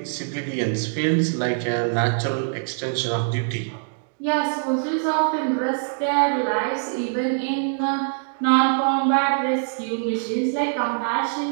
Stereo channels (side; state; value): left; silent; digital silence